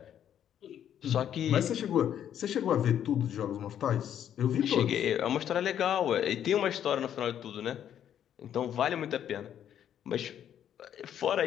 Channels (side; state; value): right; quieter; 9.9 dB